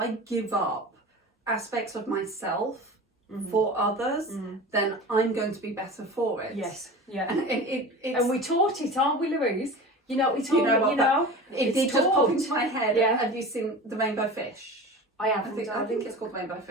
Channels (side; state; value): both; normal; correlation 0.34